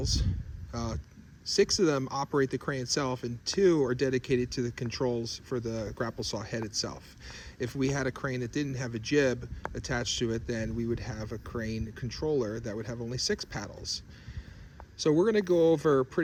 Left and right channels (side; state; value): both; identical; correlation 1.00